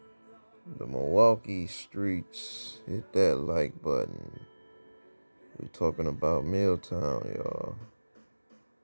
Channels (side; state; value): both; inverted; correlation -1.00